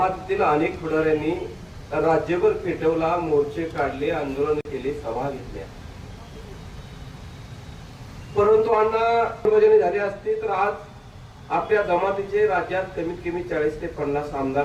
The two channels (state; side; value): identical; both; correlation 1.00